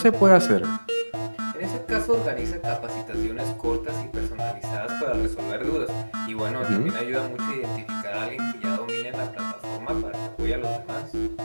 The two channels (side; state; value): both; inverted; correlation -1.00